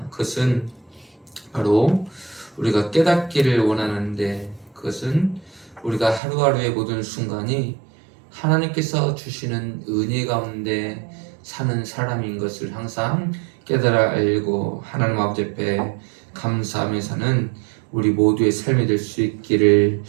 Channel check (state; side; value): drops out; left; at 6.2 s